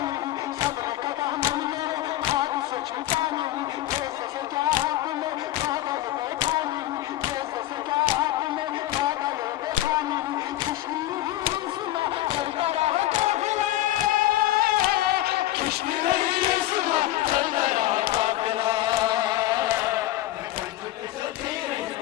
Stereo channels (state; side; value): quieter; right; 15.2 dB